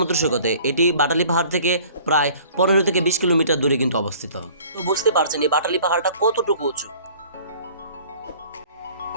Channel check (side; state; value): both; inverted; correlation -0.50